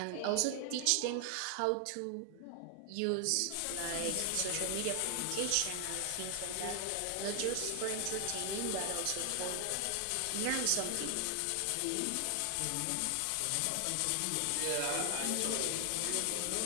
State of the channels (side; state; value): both; different; correlation 0.00